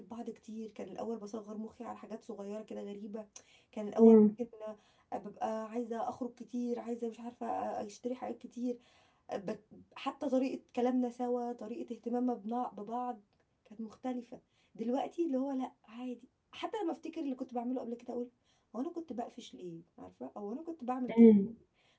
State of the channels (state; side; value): identical; both; correlation 1.00